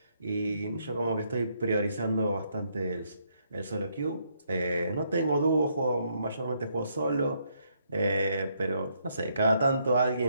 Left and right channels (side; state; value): both; inverted; correlation -0.74